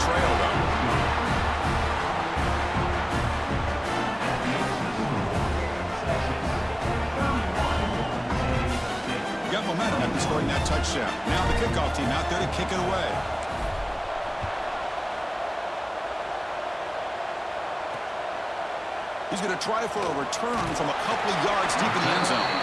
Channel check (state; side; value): identical; both; correlation 1.00